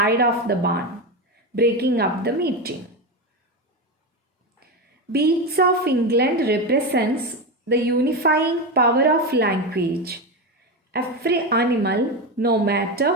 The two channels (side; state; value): both; normal; correlation 0.16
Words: of the barn, breaking up the meeting. Beats of England represents the unifying power of language. Every animal, no matter